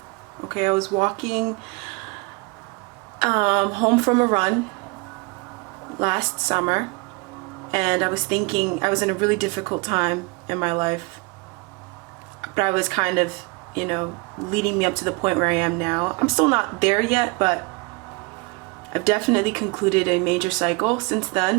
home from a run last summer, and I was thinking, I was in a really difficult time in my life, but I was kind of, you know, leading me up to the point where I am now. I'm still not there yet, but I've definitely concluded a major cycle since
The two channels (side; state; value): left; quieter; 27.8 dB